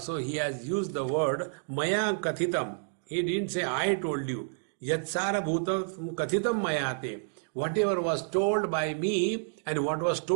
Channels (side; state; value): left; silent; digital silence